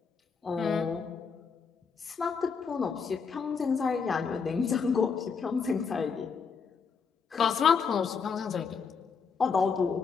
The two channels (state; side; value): quieter; right; 5.7 dB